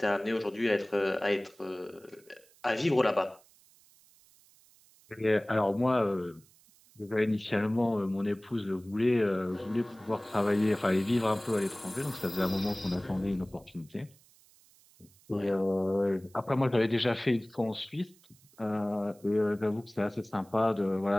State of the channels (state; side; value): noise; right; hiss, 29 dB below the sound